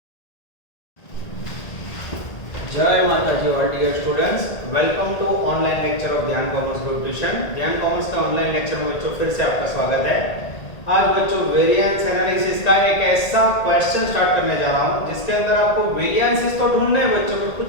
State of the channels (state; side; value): late; right; 1.8 ms